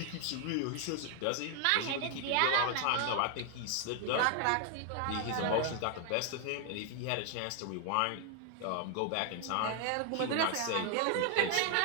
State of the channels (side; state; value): both; different; correlation 0.00